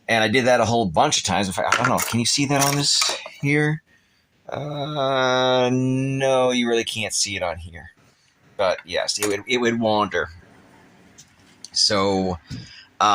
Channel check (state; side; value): identical; both; correlation 1.00